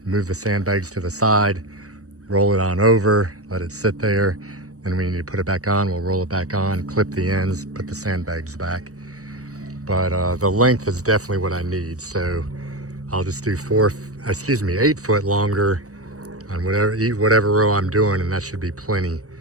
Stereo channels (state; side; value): late; left; 0.66 ms